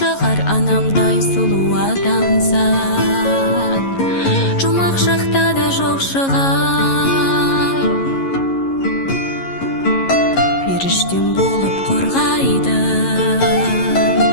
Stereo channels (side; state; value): right; late; 11 ms